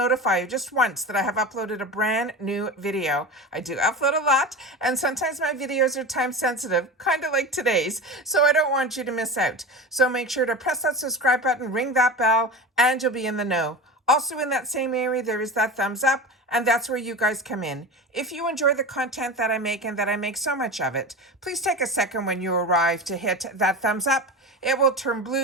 you just once that I have uploaded a brand new video. I do upload a lot, and sometimes my videos are time sensitive, kind of like today's, so I don't want you to miss out. So make sure to press that subscribe button, ring that bell, and you'll be in the know. Also in that same area, there is that thumbs up, and that's where you guys come in. If you enjoy the content that I make and that I make so much of it, please take a second when you arrive to hit that thumbs up. It will turn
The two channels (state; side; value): normal; both; correlation 0.28